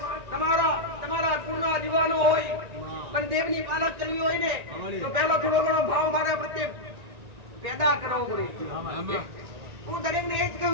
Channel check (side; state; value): left; late; 1.9 ms